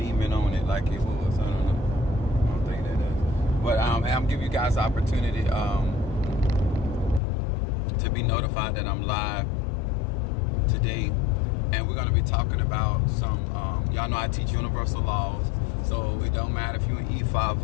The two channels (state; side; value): drops out; right; at 7.2 s